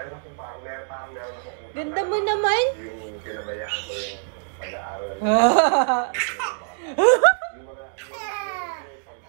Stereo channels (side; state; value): left; silent; digital silence